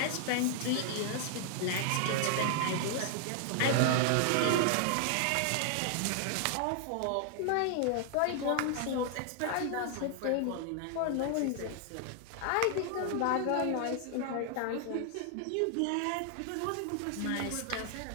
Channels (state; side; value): different; both; correlation 0.00